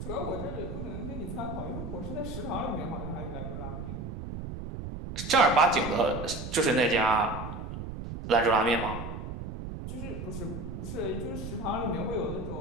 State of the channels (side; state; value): right; noise; rumble, 7 dB below the sound